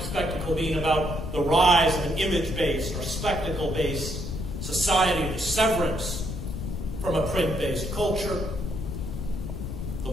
Spectacle being about the rise of an image-based or spectacle-based society, the severance from a print-based culture, the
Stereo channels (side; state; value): left; noise; rumble, 5 dB below the sound